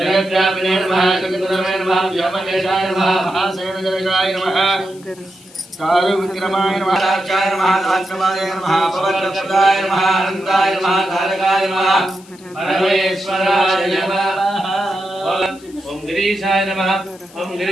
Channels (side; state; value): left; noise; hiss, 24 dB below the sound